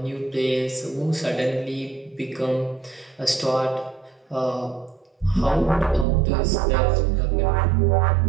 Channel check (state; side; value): drops out; left; at 6.1 s